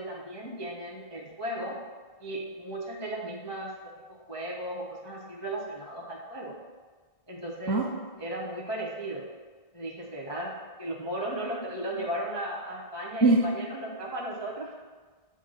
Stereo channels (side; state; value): right; late; 1.6 ms